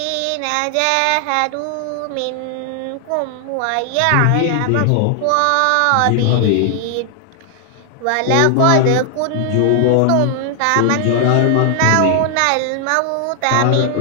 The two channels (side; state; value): both; different; correlation 0.00